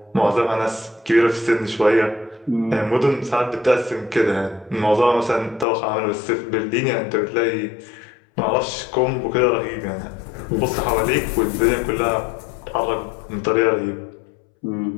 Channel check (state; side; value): drops out; right; at 5.7 s